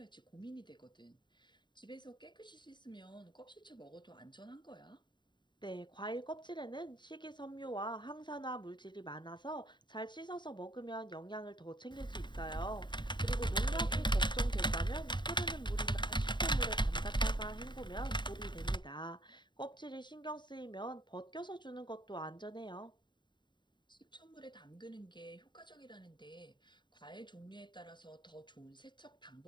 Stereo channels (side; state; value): right; late; 0.22 ms